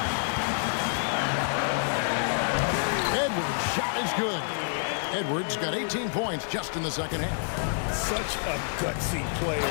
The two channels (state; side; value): silent; right; digital silence